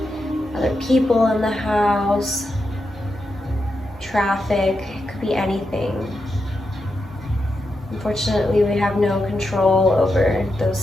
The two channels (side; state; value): both; normal; correlation 0.86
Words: other people in the house, traffic, it could be anything. Unfortunately, we have no control over those